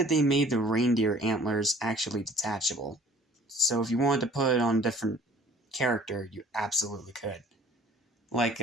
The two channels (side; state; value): both; normal; correlation 0.51